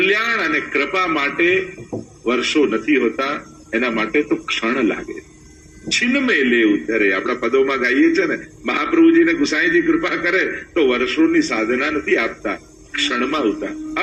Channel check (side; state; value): both; identical; correlation 1.00